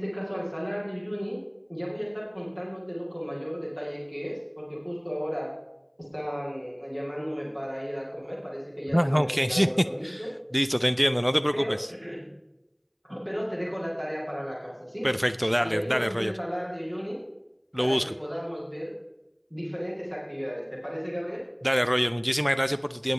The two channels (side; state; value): both; identical; correlation 1.00